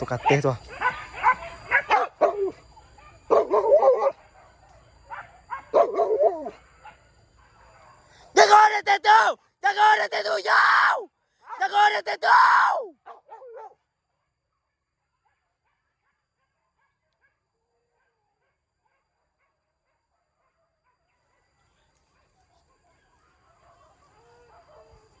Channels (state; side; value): identical; both; correlation 1.00